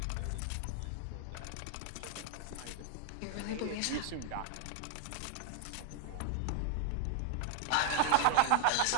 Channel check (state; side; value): different; both; correlation 0.00